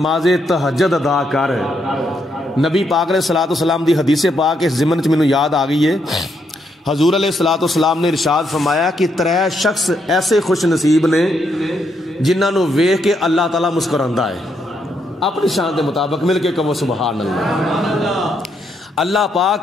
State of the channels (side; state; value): both; normal; correlation 0.77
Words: تہجد ادا کر۔ نبی پاک علیہ السلام دی حدیث پاک اس ضمن چ مینوں یاد آ گئی ہے، حضور علیہ السلام نے ارشاد فرمایا کہ 3 شخص ایسے خوش نصیب نے جنہاں نو ویکھ کے اللہ تعالیٰ مسکراندا ہے، اپنی شان دے مطابق مل کے کہو سبحان اللہ۔ اللہ